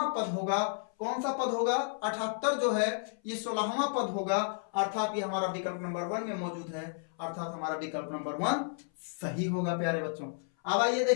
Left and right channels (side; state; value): right; silent; 56 dB below the other